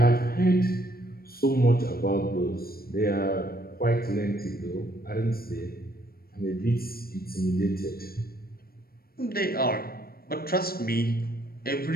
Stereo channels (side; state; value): right; late; 0.44 ms